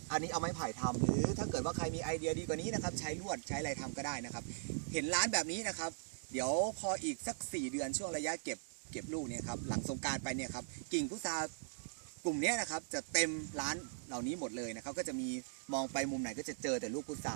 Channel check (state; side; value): silent; left; digital silence